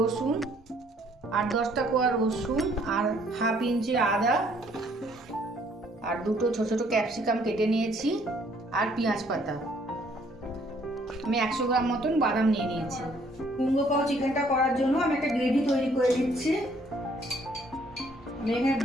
8-10টা কোয়া রসুন, আর হাফ ইঞ্চি আদা, আর 2টো ছোট ছোট ক্যাপসিকাম কেটে নিয়েছি, আর পেঁয়াজ পাতা। আমি 100 গ্রাম মতন বাদাম নিয়ে নিয়েছি। কুঙ্গো পাও চিকেনটা করার জন্য আমি একটা গ্রেভি তৈরি করে দিচ্ছি। আমি এখানে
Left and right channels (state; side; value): normal; both; correlation 0.63